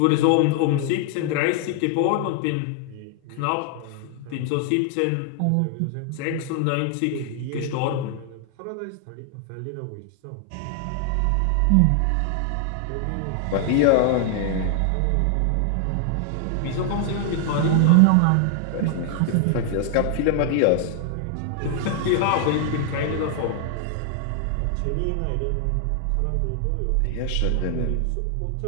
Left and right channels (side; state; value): both; different; correlation 0.00